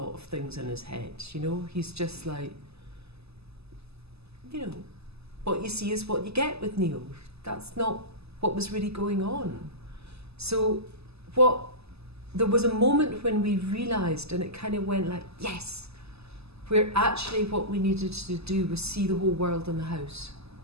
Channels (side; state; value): left; late; 0.79 ms